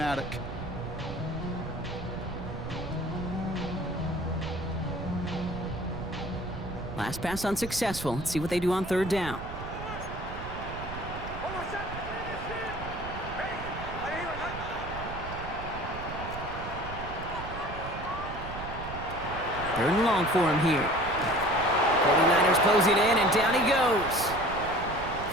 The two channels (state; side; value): noise; right; rumble, 9 dB below the sound